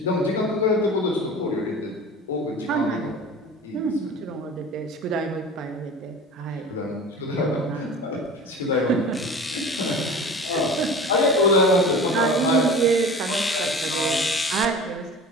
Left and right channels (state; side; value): normal; both; correlation 0.37